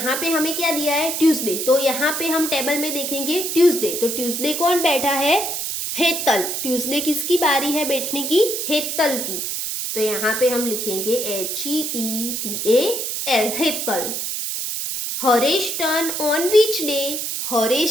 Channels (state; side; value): noise; right; hiss, 3 dB below the sound